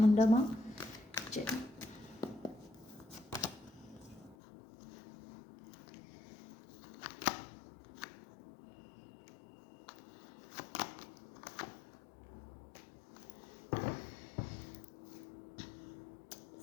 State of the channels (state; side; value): drops out; right; at 4.4 s